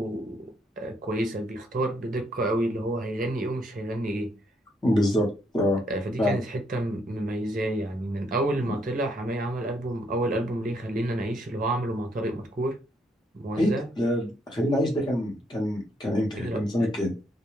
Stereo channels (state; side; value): normal; both; correlation 0.73